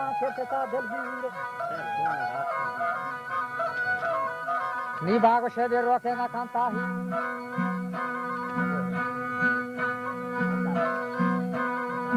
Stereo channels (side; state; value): both; identical; correlation 1.00